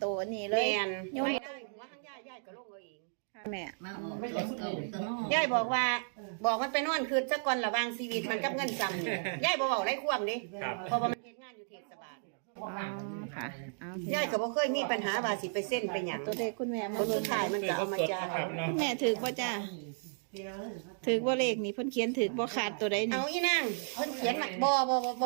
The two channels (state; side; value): silent; left; digital silence